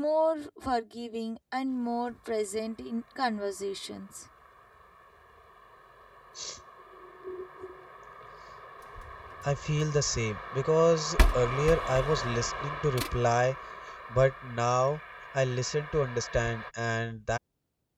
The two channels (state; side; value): identical; both; correlation 1.00